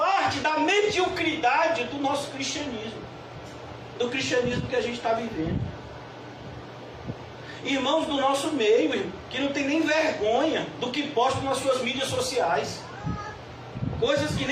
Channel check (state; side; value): identical; both; correlation 1.00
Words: da mediocridade do nosso cristianismo. Do cristianismo que a gente está vivendo. Irmãos do nosso meio, que não tem nem vergonha do que postam nas suas mídias sociais. Coisas que